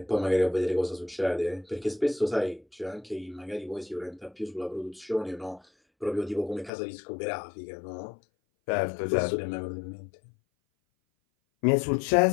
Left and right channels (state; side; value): drops out; right; at 6.7 s